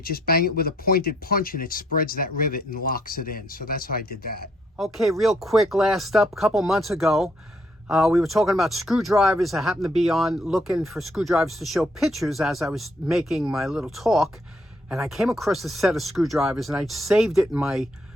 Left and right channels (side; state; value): both; normal; correlation 0.70